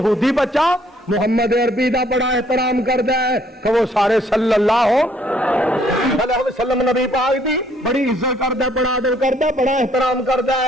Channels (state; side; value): normal; both; correlation 0.65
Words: بچہ محمد عربی دا بڑا احترام کردا ہے کہ وہ سارے صلی اللہ علیہ وسلم نبی پاک دی بڑی عزت کردا ہے، بڑا ادب کردا ہے، بڑا احترام کردا